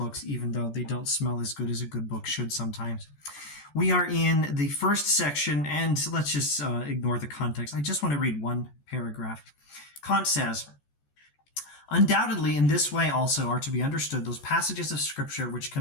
even though they don't smell as good as a good book should sometimes. We are in the first section, and let's just ignore the context. I just want to read one paragraph. Kant says, "Undoubtedly, in this way also are to be understood those passages of Scripture which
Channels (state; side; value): late; right; 14 ms